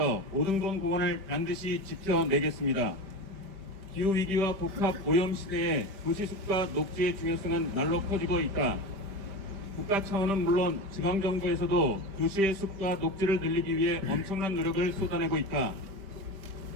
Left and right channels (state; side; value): late; left; 5.1 ms